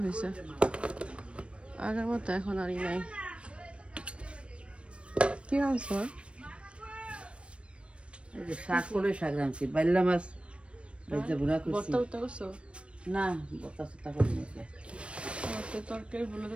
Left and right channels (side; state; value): left; late; 0.059 ms